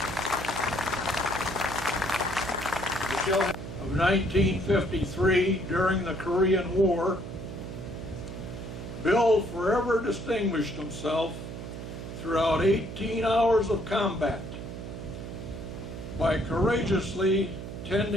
Of 1953, during the Korean War, Bill forever distinguished himself throughout 18 hours of combat by courageously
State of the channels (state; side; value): noise; right; hum, 9 dB below the sound